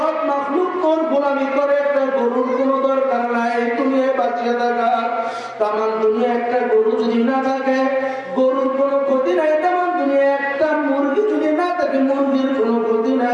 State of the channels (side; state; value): both; identical; correlation 1.00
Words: মাখলুক তোর গোলামি করে একটা গরুর কোনো দরকার নাই দুনিয়ায় বাঁচিয়ে থাকা তামাম দুনিয়া একটা গরু যদি না থাকে গরুর কোনো ক্ষতি নাই তামাম দুনিয়া একটা মুরগি যদি না থাকে মুরগির কোনো ক্ষতি